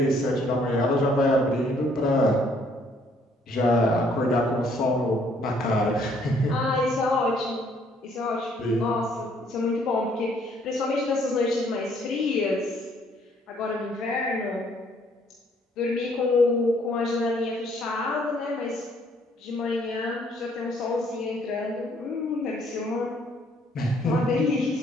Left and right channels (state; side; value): normal; both; correlation 0.65